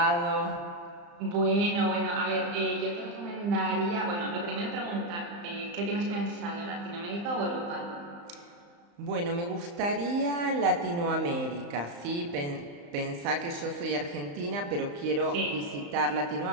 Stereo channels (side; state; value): left; late; 35 ms